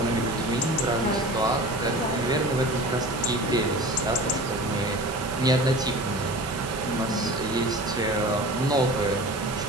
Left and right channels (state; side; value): noise; right; hiss, 15 dB below the sound